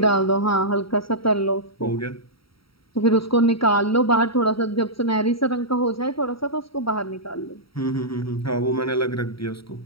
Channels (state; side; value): late; right; 0.75 ms